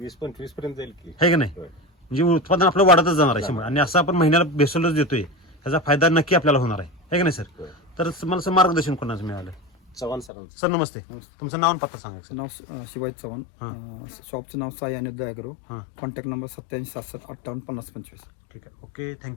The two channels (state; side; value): drops out; right; at 10.3 s